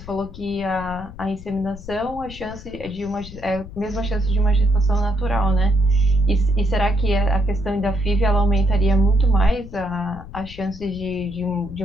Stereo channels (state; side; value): noise; left; rumble, 14 dB below the sound